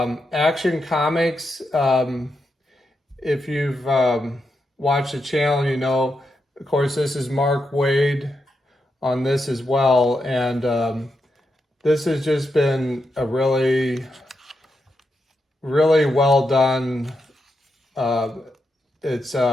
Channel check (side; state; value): both; normal; correlation 0.85